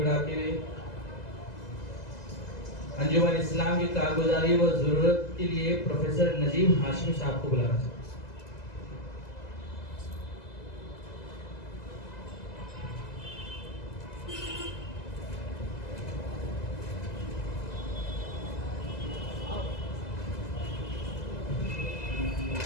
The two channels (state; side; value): late; right; 2.0 ms